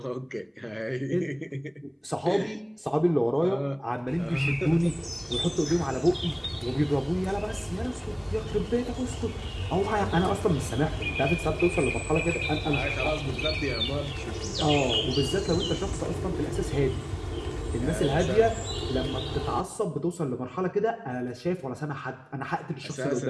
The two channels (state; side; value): identical; both; correlation 1.00